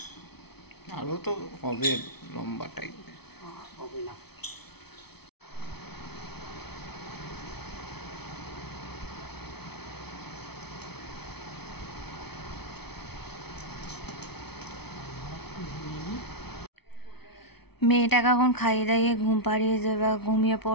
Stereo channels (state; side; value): late; right; 0.98 ms